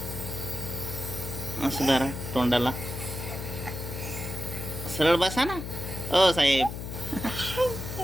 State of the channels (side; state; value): left; noise; hum, 7 dB below the sound